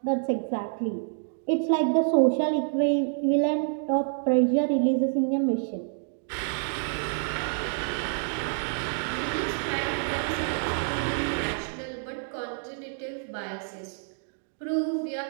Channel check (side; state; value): left; silent; digital silence